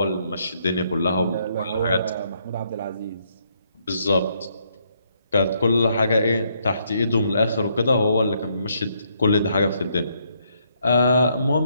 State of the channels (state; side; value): inverted; both; correlation -0.73